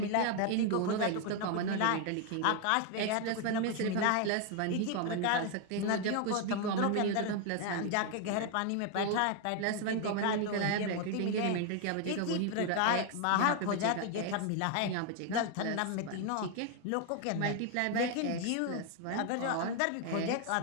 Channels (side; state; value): both; different; correlation 0.01